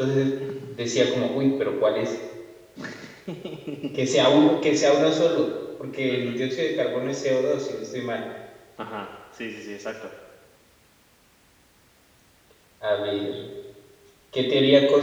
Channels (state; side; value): identical; both; correlation 1.00